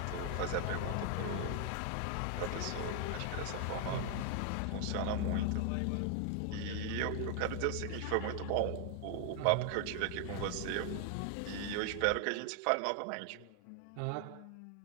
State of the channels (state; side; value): different; both; correlation 0.00